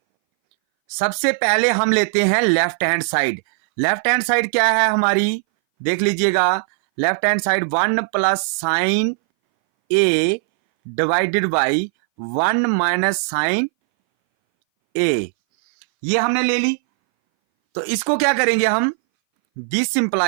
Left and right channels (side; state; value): left; silent; 62 dB below the other